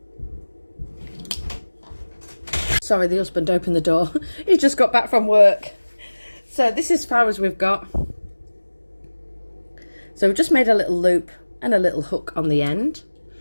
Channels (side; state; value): both; inverted; correlation -1.00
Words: Sorry, the husband opened the door. He just got back from work. So this is as far as we've got. So we've just made a little loop and a little hook on the end.